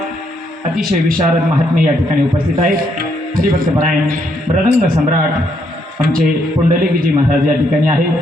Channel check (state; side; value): normal; both; correlation 0.74